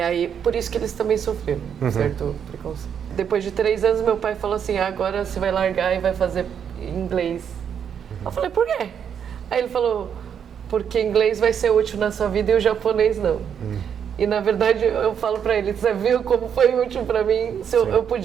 por isso que eles também sofreram certo preconceito. Depois de 3 anos, meu pai falou assim, agora você vai largar e vai fazer inglês. Eu falei, por quê? Aí ele falou, porque inglês vai ser útil na sua vida e o japonês não. E na verdade, eu falo pra ele, você viu como foi útil pra mim? Eu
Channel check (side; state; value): left; quieter; 8.0 dB